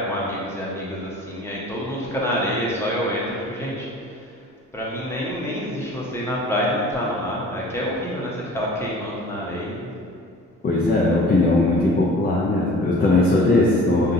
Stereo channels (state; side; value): normal; both; correlation 0.46